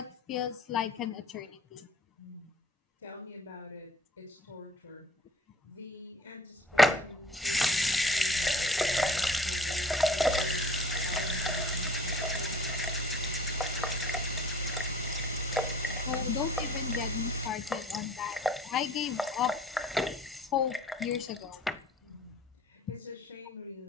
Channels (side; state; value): both; normal; correlation 0.48